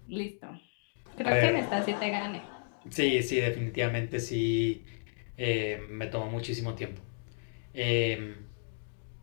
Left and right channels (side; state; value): right; silent; digital silence